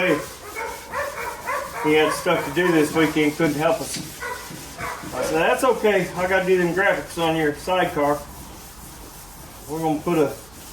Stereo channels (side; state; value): right; noise; hum, 25 dB below the sound